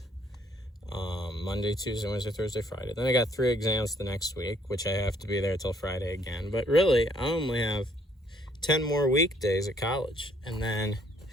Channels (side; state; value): both; normal; correlation 0.65